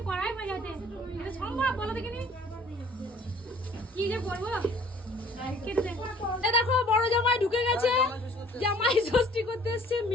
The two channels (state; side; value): normal; both; correlation 0.54